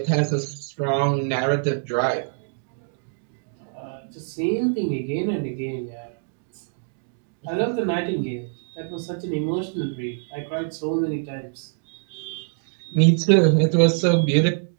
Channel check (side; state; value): left; silent; digital silence